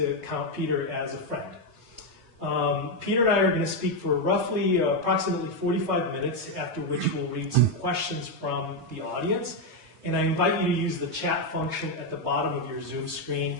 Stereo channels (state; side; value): normal; both; correlation 0.04